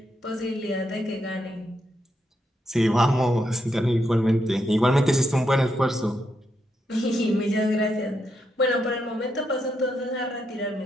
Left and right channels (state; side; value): normal; both; correlation 0.81